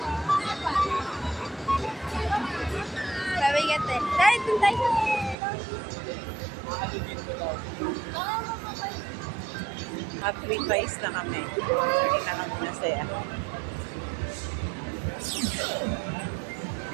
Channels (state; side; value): drops out; left; at 5.4 s